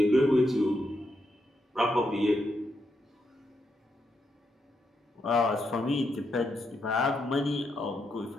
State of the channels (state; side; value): normal; both; correlation 0.81